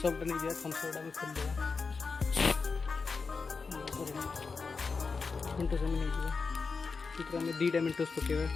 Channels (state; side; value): quieter; right; 4.7 dB